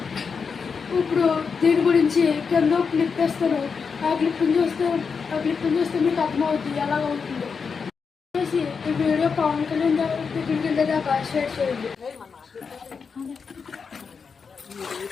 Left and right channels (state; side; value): quieter; right; 5.6 dB